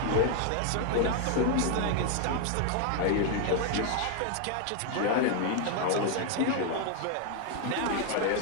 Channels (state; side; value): different; both; correlation 0.00